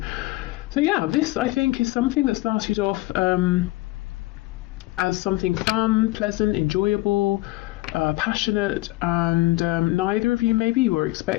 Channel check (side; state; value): right; quieter; 19.9 dB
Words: So yeah, this I think is something that started off as something fun, pleasant, enjoyable, passionate, and neither of you maybe were